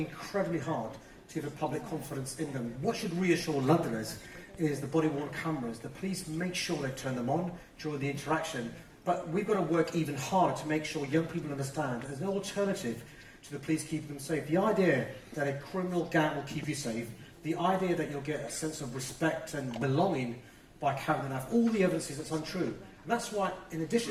hard to give the public confidence in them. What should reassure Londoners is the body-worn cameras. The police make sure they turn them on during the interaction, but we've got to work even harder to make sure young people understand there's no alternative to the police keeping them safe. The idea that a criminal gang will keep you safe, the idea that you'll get a sense of respect and belonging by carrying the knife, all the evidence is that's untrue. And that's why, in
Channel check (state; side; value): identical; both; correlation 1.00